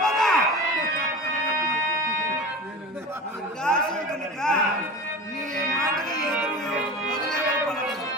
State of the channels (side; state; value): both; normal; correlation 0.33